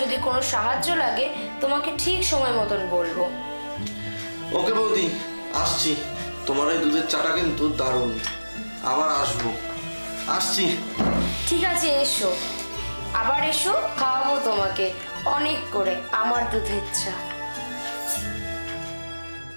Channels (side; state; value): both; inverted; correlation -1.00